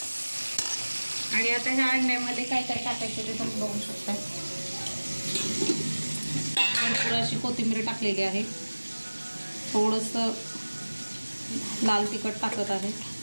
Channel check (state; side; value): inverted; both; correlation -1.00